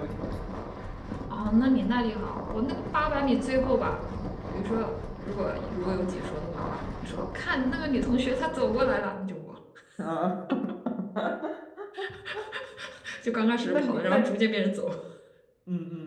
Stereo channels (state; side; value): identical; both; correlation 1.00